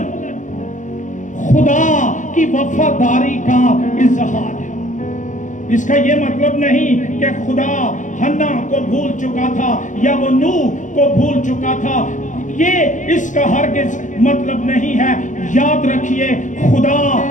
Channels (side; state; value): right; late; 0.37 ms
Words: خدا کی وفاداری کا اظہار ہے۔ اس کا یہ مطلب نہیں کہ خدا حنا کو بھول چکا تھا یا وہ نوح کو بھول چکا تھا، یہ اس کا ہرگز مطلب نہیں ہے۔ یاد رکھیے، خدا